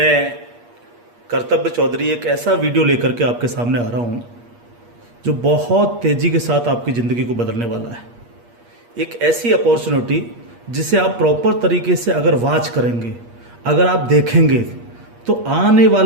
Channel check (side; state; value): left; late; 8.5 ms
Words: कर्तव्य चौधरी एक ऐसा वीडियो लेकर के आपके सामने आ रहा हूँ जो बहुत तेज़ी के साथ आपकी ज़िंदगी को बदलने वाला है। एक ऐसी अपॉर्चुनिटी जिसे आप प्रॉपर तरीके से अगर वॉच करेंगे, अगर आप देखेंगे तो आने